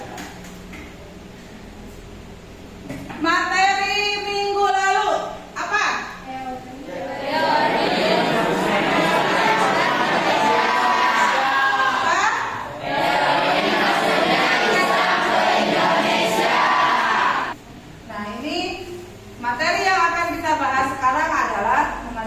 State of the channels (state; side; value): identical; both; correlation 1.00